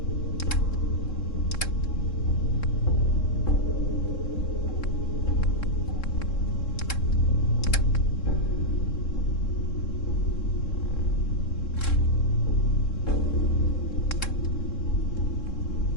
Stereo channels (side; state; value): right; late; 3.7 ms